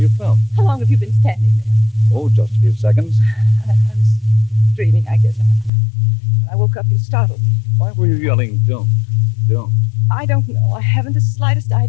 felt. How long have you been standing there? Oh, just a few seconds. I was dreaming, I guess. When I woke up, you startled me. Why were you yelling, don't? I don't know. I haven't the slightest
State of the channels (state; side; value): drops out; right; at 5.7 s